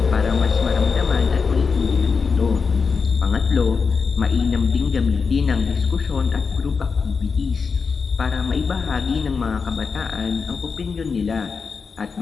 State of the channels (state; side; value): quieter; right; 5.3 dB